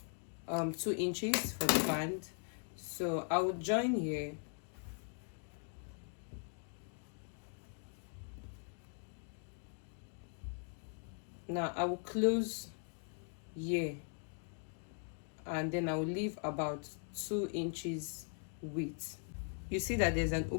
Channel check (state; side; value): silent; right; 51 dB below the other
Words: inches for the band. So I will join here. Now I will close here, and then I will leave about 2 inches width. You see that there's an